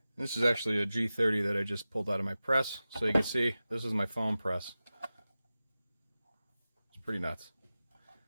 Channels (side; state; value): both; inverted; correlation -0.95